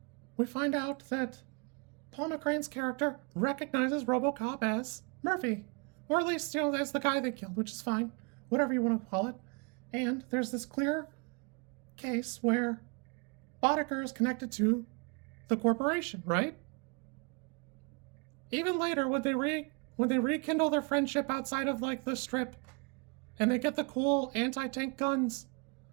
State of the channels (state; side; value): quieter; left; 32.2 dB